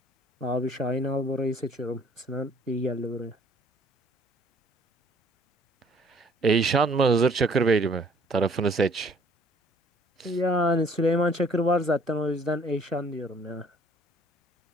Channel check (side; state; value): both; normal; correlation 0.58